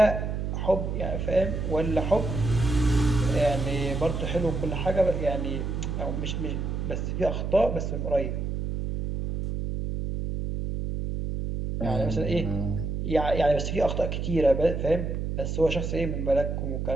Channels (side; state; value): right; noise; hum, 2 dB below the sound